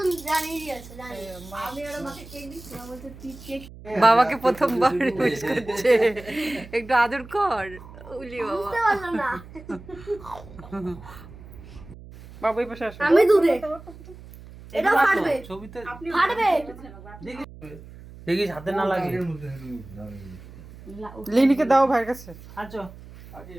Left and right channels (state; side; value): noise; right; hum, 17 dB below the sound